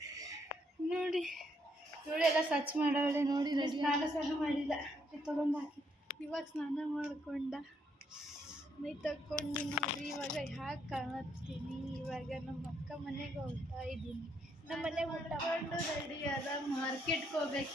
ನೋಡಿ. ಎಲ್ಲ ಸ್ವಚ್ಛ ಮಾಡವಳೆ ನೋಡಿ. ಸ್ನಾನ ಮಾಡಿಲ್ಲ, ತೊಗೊಂಡು ಹಾಕಿ ಇವಾಗ ಸ್ನಾನ ಮಾಡ್ಕೊಂಡ ಮೈ ತಗೊಂಡು ನೋಡ್ರಿ. ಇವಾಗ ಯಾಕೆ ಕಾಣತ್ತೀನಿ, ಇವಾಗ ನಮ್ಮ ಅಕ್ಕ ಮನೆಗೆ ಹೋಗ್ತಾ ಇದ್ದೀನಿ. ನಮ್ಮ ಮನೆಗೆ ಊಟಕೊಂಡು ರೆಡಿ ಅದ, ಮಾರ್ಕೆಟ್ಗೆ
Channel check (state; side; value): normal; both; correlation 0.73